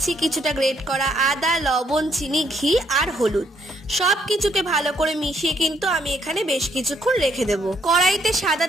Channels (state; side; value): normal; both; correlation 0.71